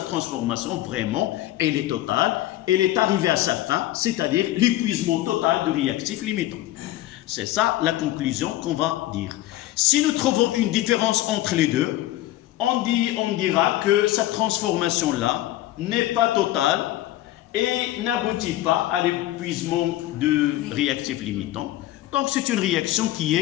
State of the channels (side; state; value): right; quieter; 15.1 dB